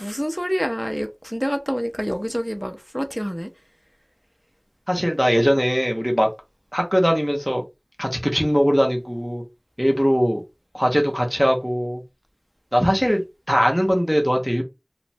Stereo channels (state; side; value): identical; both; correlation 1.00